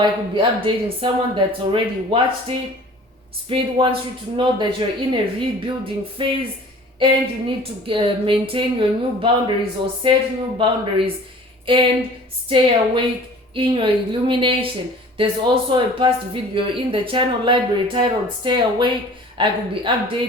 I could be updating someone that's already watched it. Spirit wants you to know that you're in a rebuilding phase and you need to maintain your new boundaries or set new boundaries and stay awake in your illumination. There's also a past video in the channel library titled Stay Awake. I could be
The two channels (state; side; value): normal; both; correlation 0.46